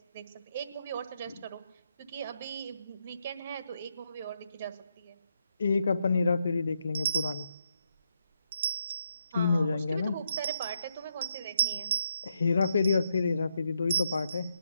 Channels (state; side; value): inverted; both; correlation -0.79